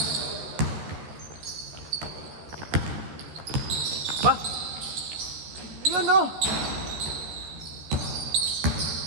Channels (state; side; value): late; left; 13 ms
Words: Ba? Yun o!